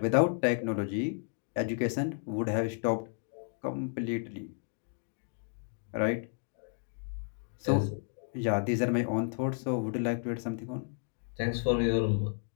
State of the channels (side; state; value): right; silent; 56 dB below the other